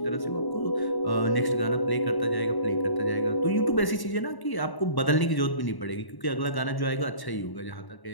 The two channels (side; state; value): right; late; 1.1 ms